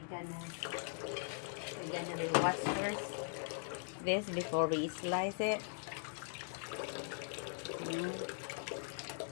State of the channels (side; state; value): right; silent; digital silence